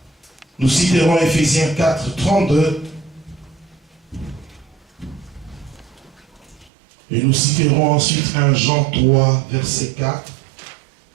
Nous citerons Éphésiens 4, 32. Et nous citerons ensuite 1 Jean 3, verset 4.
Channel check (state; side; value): drops out; left; at 6.7 s